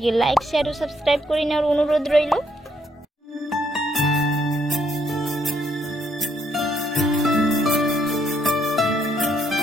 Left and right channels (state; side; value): normal; both; correlation 0.72